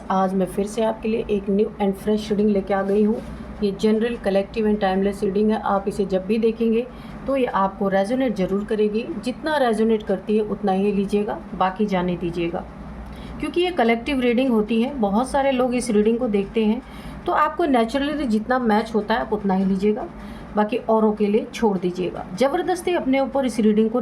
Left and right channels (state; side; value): identical; both; correlation 1.00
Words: आज मैं फिर से आपके लिए एक न्यू एंड फ्रेश रीडिंग लेके आ गई हूँ। ये general, collective and timeless reading है। आप इसे जब भी देखेंगे तो ये आपको रेजोनेट ज़रूर करेगी। जितना रेजोनेट करती है उतना ही लीजिएगा, बाकी जाने दीजिएगा, क्योंकि ये कलेक्टिव रीडिंग होती है। बहुत सारे लोग इस रीडिंग को देखते हैं, तो आपको नेचुरली जितना मैच होता है आप उतना ही लीजिएगा, बाकी औरों के लिए छोड़ दीजिएगा। ज़बरदस्ती अपने ऊपर इस रीडिंग को